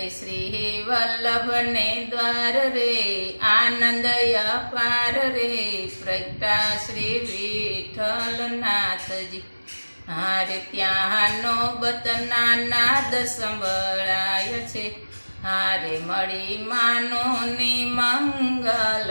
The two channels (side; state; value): both; inverted; correlation -1.00